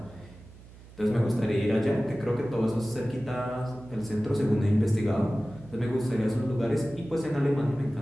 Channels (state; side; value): noise; right; hum, 20 dB below the sound